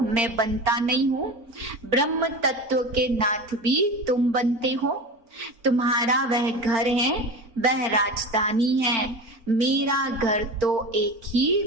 मैं बनता नहीं हूँ। ब्रह्म तत्व के नाथ भी तुम बनते हो। तुम्हारा वह घर है, वह राजधानी है। मेरा घर तो एक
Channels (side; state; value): left; late; 4.4 ms